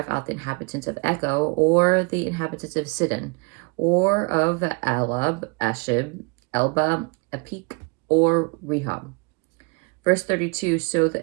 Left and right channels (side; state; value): left; quieter; 31.9 dB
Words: out the inhabitants of Echo or the inhabitants of Sidon, or of Alab, Ashib, Elba, Apik, or Rehob. Verse 32, so